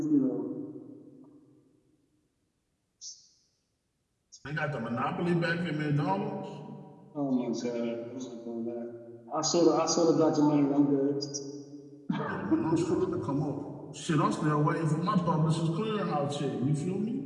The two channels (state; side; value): identical; both; correlation 1.00